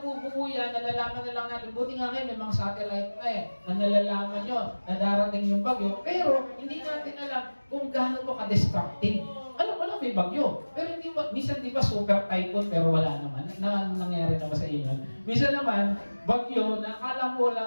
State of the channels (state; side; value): inverted; both; correlation -1.00